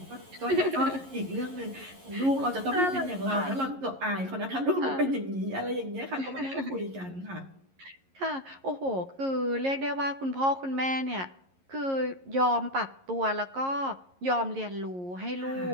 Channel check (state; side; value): late; left; 11 ms